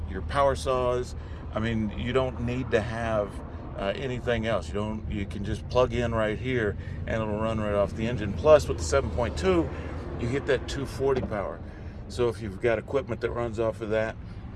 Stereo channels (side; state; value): both; identical; correlation 1.00